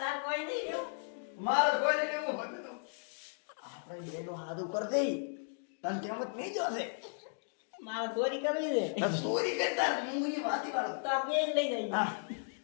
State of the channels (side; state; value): right; silent; digital silence